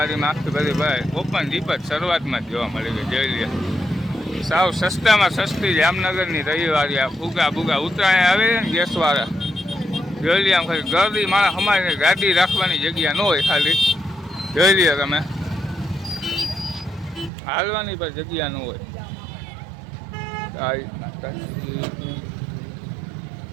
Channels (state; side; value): drops out; left; at 17.3 s